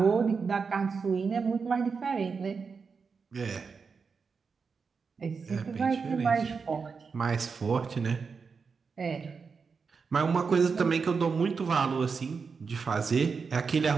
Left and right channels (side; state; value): left; quieter; 5.3 dB